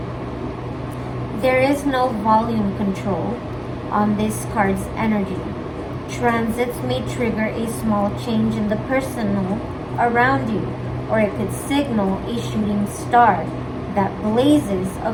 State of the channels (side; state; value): both; identical; correlation 1.00